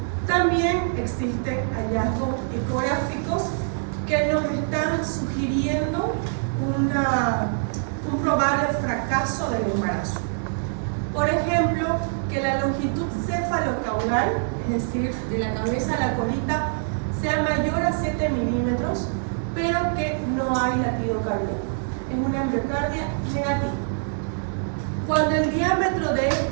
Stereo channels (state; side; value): silent; left; digital silence